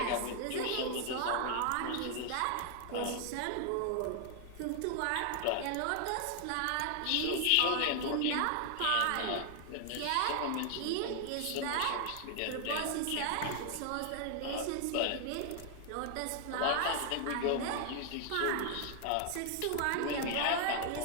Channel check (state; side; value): different; both; correlation 0.00